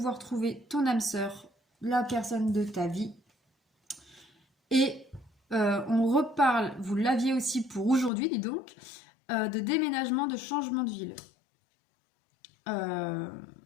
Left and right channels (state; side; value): drops out; right; at 8.1 s